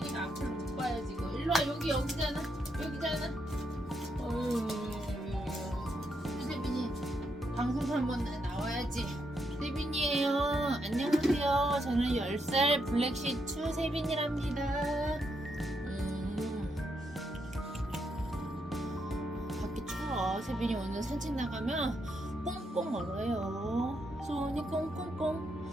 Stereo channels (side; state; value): both; normal; correlation 0.80